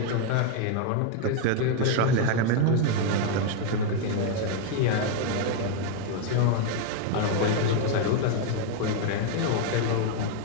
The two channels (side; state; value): both; different; correlation 0.01